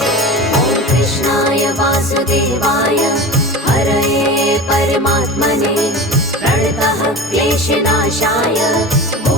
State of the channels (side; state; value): both; normal; correlation 0.32